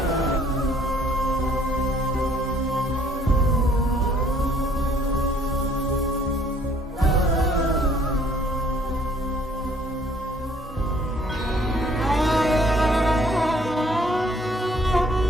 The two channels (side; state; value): both; normal; correlation 0.60